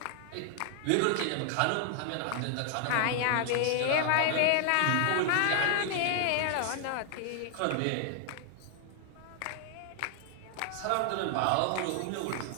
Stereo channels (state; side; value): different; both; correlation 0.00